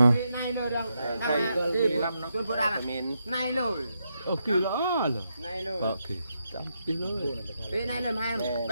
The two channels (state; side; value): inverted; both; correlation -0.83